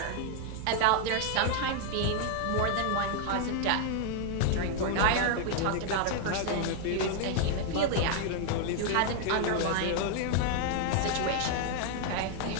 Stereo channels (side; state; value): both; different; correlation 0.00